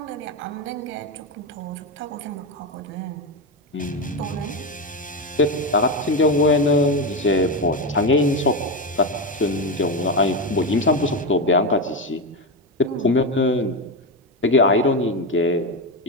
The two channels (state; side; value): normal; both; correlation 0.12